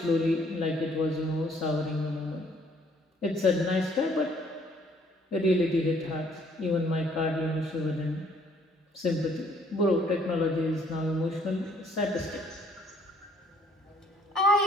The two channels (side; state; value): both; normal; correlation 0.62